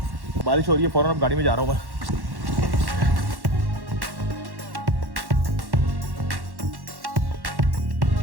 बारिश हो रही है, फ़ौरन अब गाड़ी में जा रहा हूँ मैं।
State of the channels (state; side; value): late; left; 1.1 ms